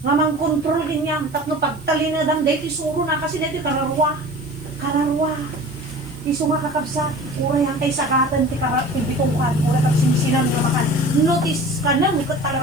Nga mang kontrol din niya. Tapno pagtali na dam, dahil isuro na kasi dahil kararwa. Kararwa. Iso nga kakabsa. Ura yan kay sakatan, tibitukan. Ura kag sinisinan na makan. Notice ka na, ikot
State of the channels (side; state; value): right; noise; hiss, 25 dB below the sound